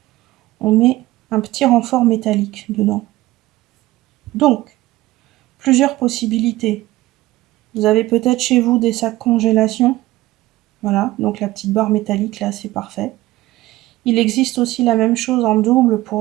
on met un petit renfort métallique dedans. Donc, plusieurs possibilités. Vous avez peut-être chez vous des sacs congélation. Voilà, donc la petite barre métallique là, c'est parfait. Il existe aussi la même chose en double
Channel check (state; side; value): quieter; left; 17.4 dB